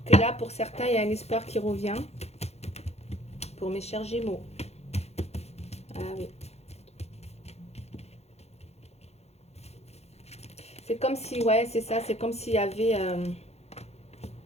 que là, pour certains, il y a un espoir qui revient. Pour mes chers Gémeaux. Ah oui. C'est comme si, ouais, c'est ça. C'est comme s'il y avait...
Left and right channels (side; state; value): right; late; 0.31 ms